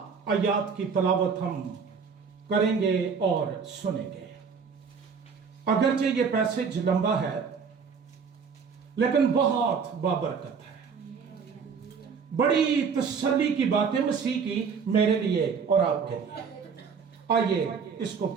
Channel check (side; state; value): left; quieter; 5.9 dB